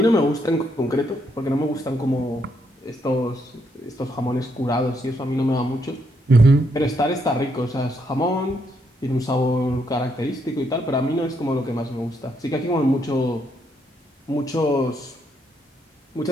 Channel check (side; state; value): both; normal; correlation 0.75